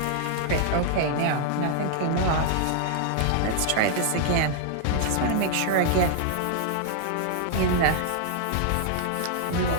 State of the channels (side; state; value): both; different; correlation -0.01